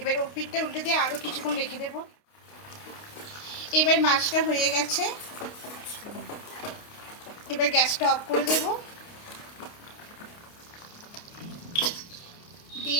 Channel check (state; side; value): late; right; 29 ms